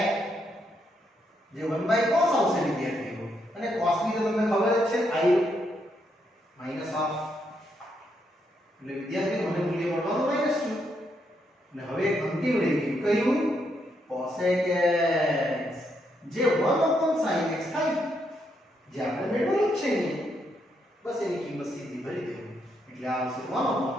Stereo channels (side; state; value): both; normal; correlation 0.78